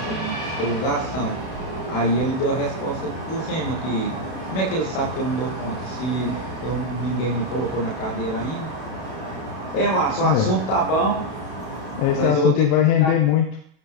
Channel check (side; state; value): right; late; 32 ms